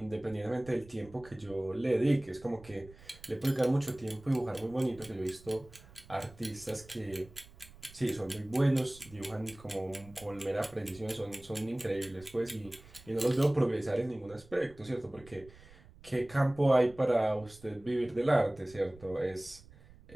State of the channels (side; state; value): right; noise; rumble, 22 dB below the sound